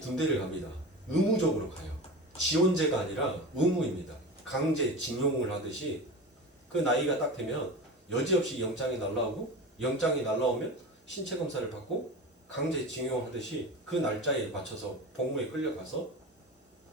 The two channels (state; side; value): normal; both; correlation 0.29